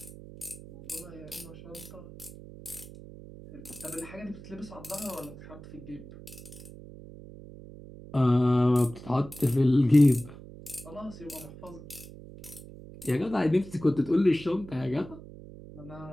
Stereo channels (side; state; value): right; noise; hum, 16 dB below the sound